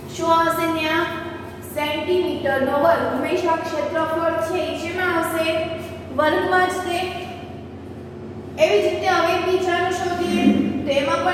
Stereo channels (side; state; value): both; identical; correlation 1.00